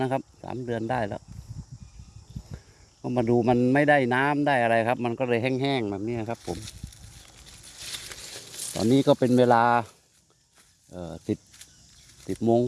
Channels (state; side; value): identical; both; correlation 1.00